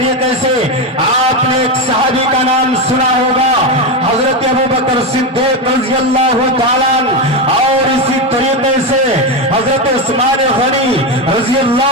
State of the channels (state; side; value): normal; both; correlation 0.12